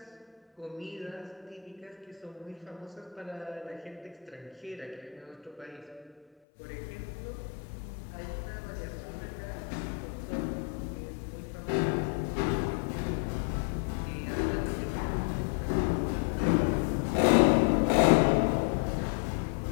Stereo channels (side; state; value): right; drops out; at 6.2 s